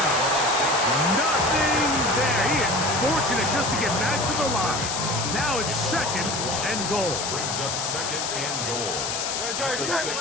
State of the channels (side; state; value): left; noise; hiss, 3 dB below the sound